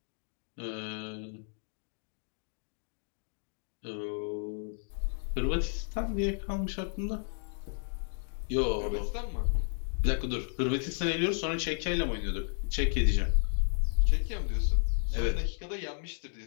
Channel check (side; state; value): right; silent; 56 dB below the other